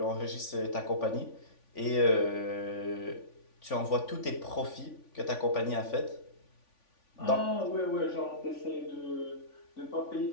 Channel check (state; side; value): late; right; 3.5 ms